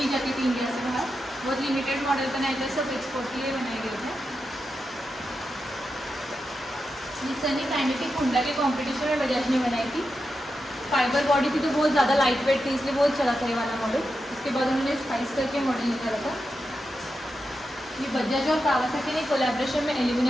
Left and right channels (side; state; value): both; normal; correlation 0.88